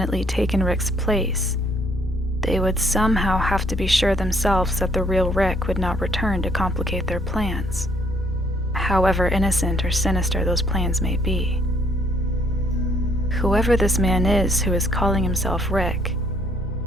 taken Rick's place, they would somehow have to be sure themselves that the real Rick would not return to complicate their plans, however innocent or sinister those plans may be. Whoever this man is who is calling himself Rick,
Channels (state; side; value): normal; both; correlation 0.66